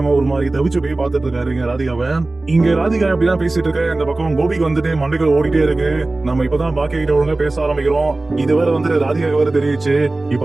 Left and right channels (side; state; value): left; quieter; 3.0 dB